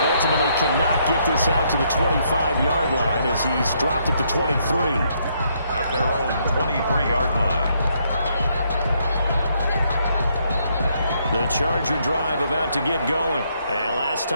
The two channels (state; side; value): inverted; both; correlation -0.73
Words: ultimately cannot get this out to the 25-yard line as he's dropped at the 23. At their own 23-yard line. The Charger drive about to get going. And last